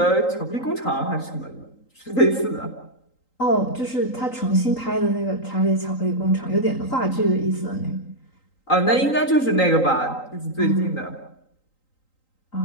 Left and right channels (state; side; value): late; right; 3.8 ms